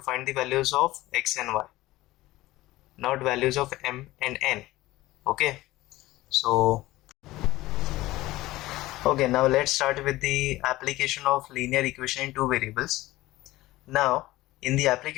find the values of x and y, not values of m and n. Okay, so now let's start with the application of linear equation in two variables. Now in the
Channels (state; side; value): quieter; right; 17.7 dB